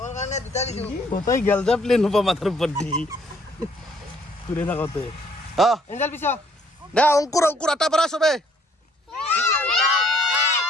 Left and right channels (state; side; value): normal; both; correlation 0.64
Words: কাৰণে দুটা দিছো কোথায় গেল যা প্লেন হবা মাথাৰ উপৰ দি ঘুৰে থাকতে এঞ্জেল পিছা দে অংকুৰ আটা পাৰা সবে